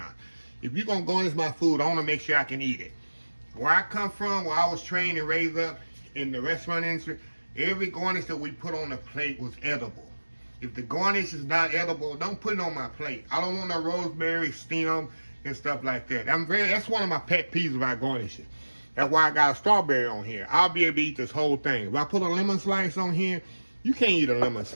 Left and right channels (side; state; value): both; inverted; correlation -1.00